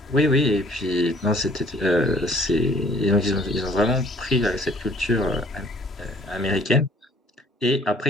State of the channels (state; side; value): normal; both; correlation 0.57